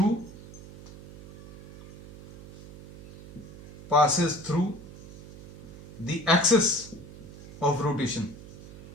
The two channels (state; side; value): noise; right; hum, 17 dB below the sound